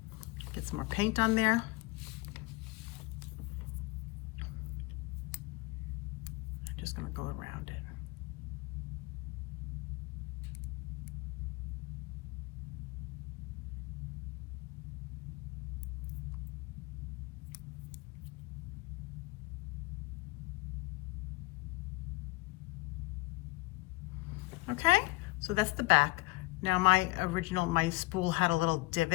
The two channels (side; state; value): right; quieter; 22.3 dB